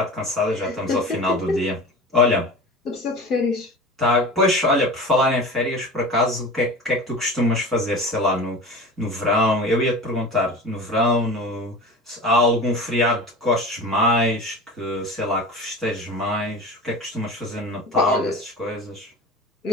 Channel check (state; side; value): normal; both; correlation 0.34